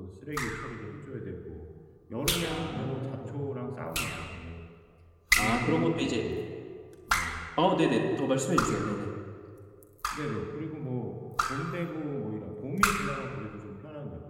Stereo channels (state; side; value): identical; both; correlation 1.00